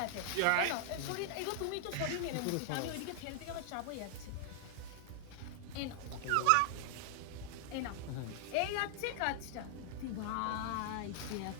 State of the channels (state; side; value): different; both; correlation 0.00